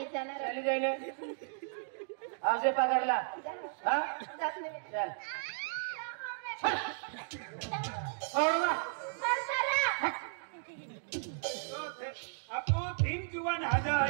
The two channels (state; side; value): silent; left; digital silence